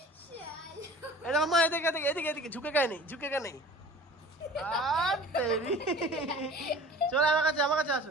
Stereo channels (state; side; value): normal; both; correlation 0.43